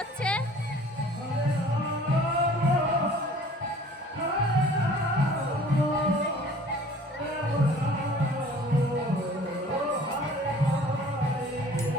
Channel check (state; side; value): normal; both; correlation 0.50